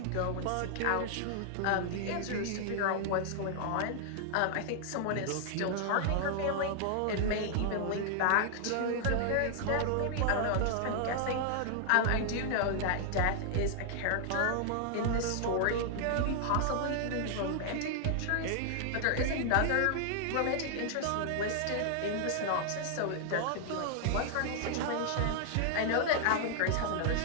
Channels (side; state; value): both; different; correlation 0.00